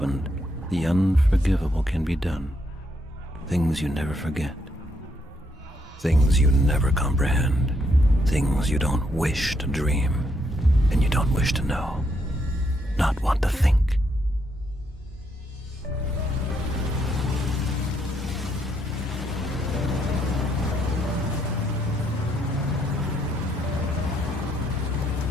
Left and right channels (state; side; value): normal; both; correlation 0.75